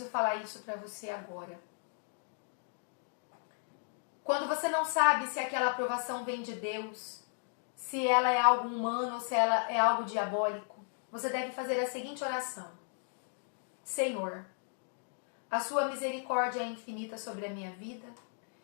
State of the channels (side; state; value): right; silent; 54 dB below the other